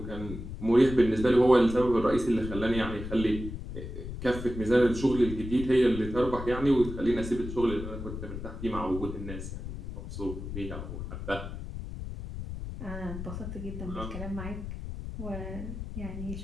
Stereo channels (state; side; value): noise; left; rumble, 8 dB below the sound